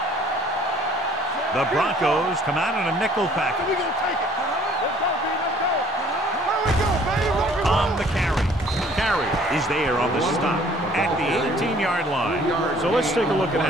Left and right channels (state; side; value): normal; both; correlation 0.56